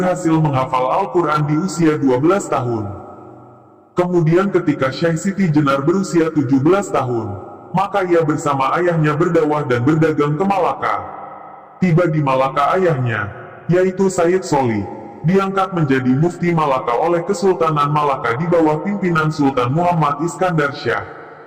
menghafal Al-Quran di usia 12 tahun. Kemudian ketika Syekh Siti Jenar berusia 17 tahun, maka ia bersama ayahnya berdakwah dan berdagang ke Malaka. Tiba di Malaka ayahnya, yaitu Sayyid Soli, diangkat menjadi mufti Malaka oleh Kesultanan Malaka di bawah pimpinan Sultan Muhammad Iskandar Syah.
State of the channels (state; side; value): identical; both; correlation 1.00